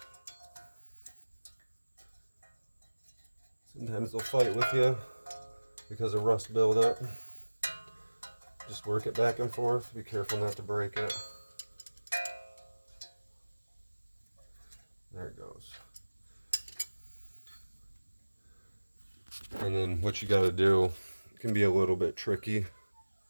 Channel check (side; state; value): both; inverted; correlation -1.00